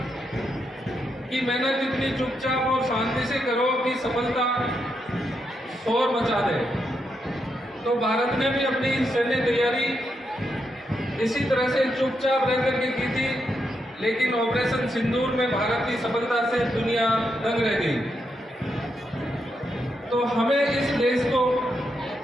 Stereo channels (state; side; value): normal; both; correlation 0.82